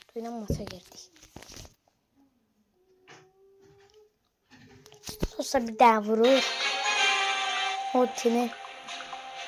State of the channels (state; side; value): identical; both; correlation 1.00